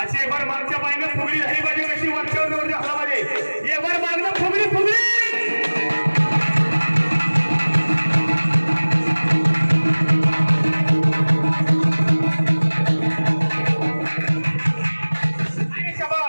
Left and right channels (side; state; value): both; inverted; correlation -1.00